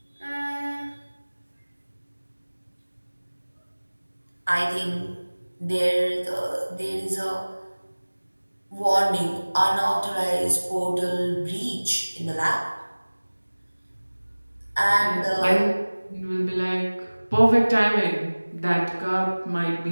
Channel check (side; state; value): both; inverted; correlation -1.00